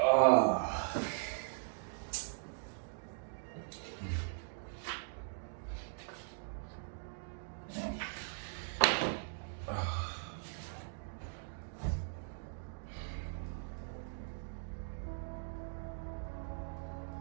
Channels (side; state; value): left; silent; digital silence